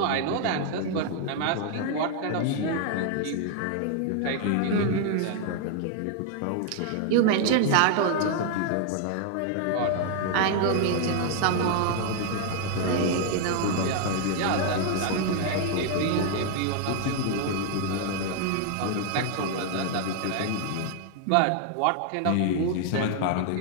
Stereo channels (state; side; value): different; both; correlation 0.00